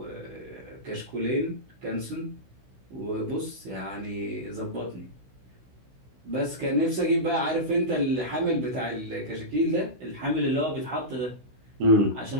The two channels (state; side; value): late; left; 16 ms